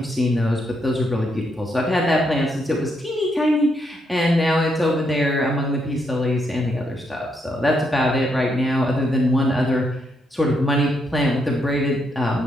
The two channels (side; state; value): both; normal; correlation 0.78